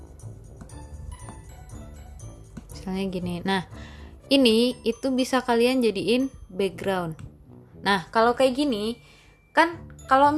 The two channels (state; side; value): identical; both; correlation 1.00